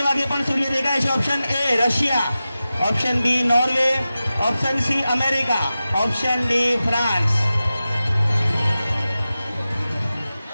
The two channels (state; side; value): inverted; both; correlation -0.94